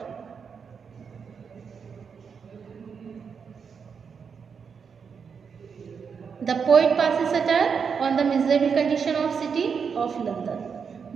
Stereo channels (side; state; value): left; quieter; 6.3 dB